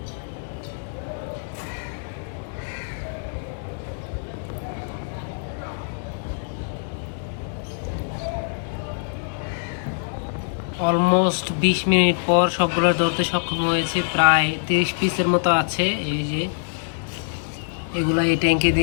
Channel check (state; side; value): silent; right; digital silence